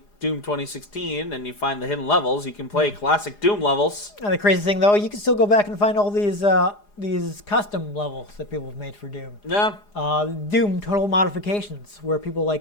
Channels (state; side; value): late; right; 4.9 ms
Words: Doom 2016 and you find the hidden levels, you can play classic Doom levels. And the crazy thing, though, you can still go back and find all these custom levels that people have made for Doom. Yeah. Doom Total Modifications, where people